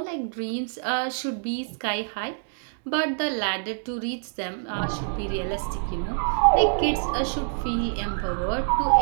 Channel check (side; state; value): left; silent; digital silence